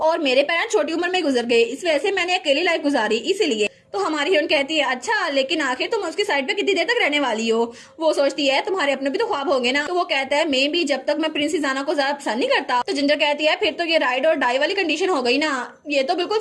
मेरे पेरेंट्स छोटी उम्र में गुजर गए, इस वजह से मैंने अकेली लाइफ गुजारी, इसीलिए। तो हमारी हीरोइन कहती है अच्छा, लेकिन आखिर तुम उसकी साइड पे कितनी देर तक रहने वाली हो? वो सोचती है तुम्हारे अपने भी तो ख्वाब होंगे ना। तो वो कहता है मैं भी, जब तक मैं प्रिंस इजाना को ज्यादा पसंद नहीं करता। तो जिंजर कहती है फिर तो ये राइड और डाई वाली कंडीशन हो गई ना, ये तो बिल्कुल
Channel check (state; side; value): identical; both; correlation 1.00